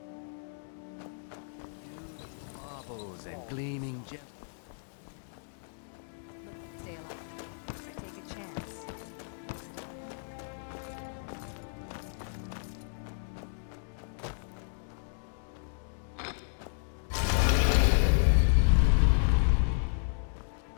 Beautiful baubles and gleaming gemstones over here. Looking to stay alive? Why take a chance?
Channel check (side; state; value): right; silent; digital silence